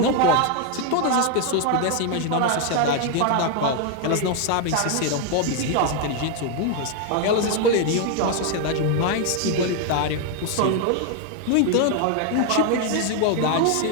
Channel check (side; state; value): both; different; correlation 0.01